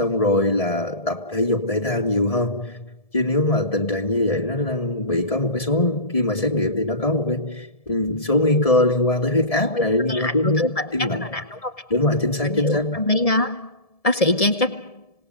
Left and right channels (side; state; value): right; late; 1.7 ms